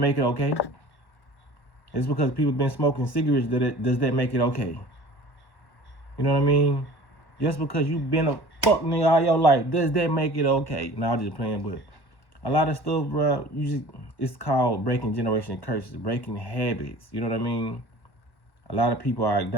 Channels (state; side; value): late; right; 1.1 ms